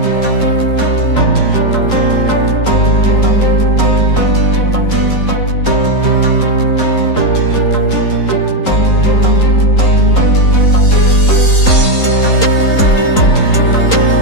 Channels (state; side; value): late; right; 3.8 ms